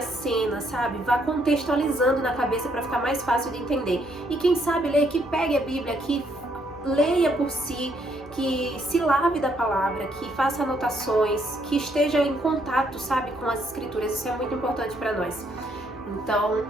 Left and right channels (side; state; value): both; normal; correlation 0.71